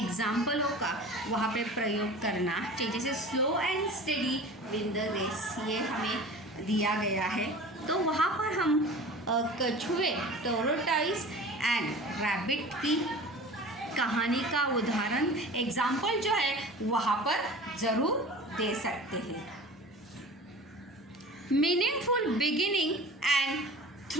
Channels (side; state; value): both; normal; correlation 0.39